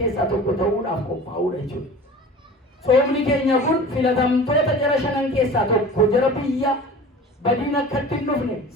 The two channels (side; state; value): both; normal; correlation 0.39